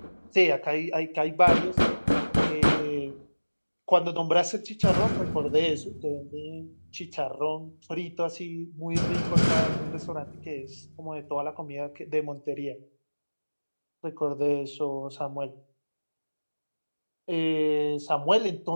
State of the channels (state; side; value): inverted; both; correlation -1.00